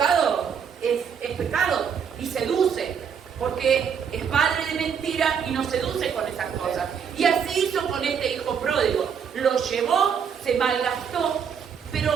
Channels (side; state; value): left; quieter; 7.3 dB